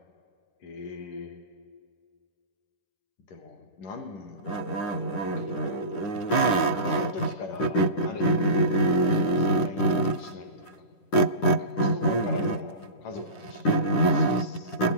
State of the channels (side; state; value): right; late; 10 ms